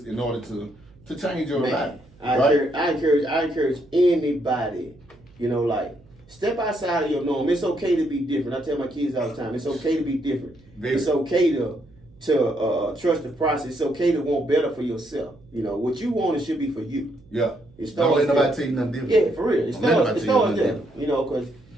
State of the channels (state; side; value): noise; right; hum, 27 dB below the sound